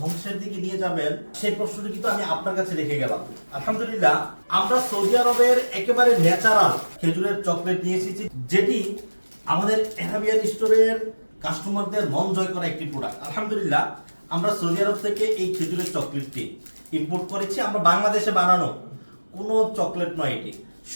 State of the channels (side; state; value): both; inverted; correlation -1.00